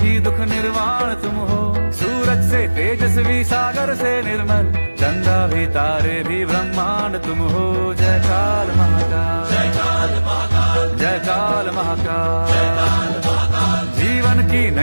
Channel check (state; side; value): inverted; both; correlation -1.00